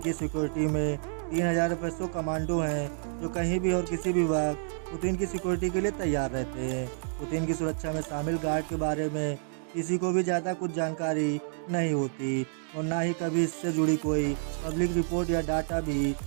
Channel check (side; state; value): left; silent; digital silence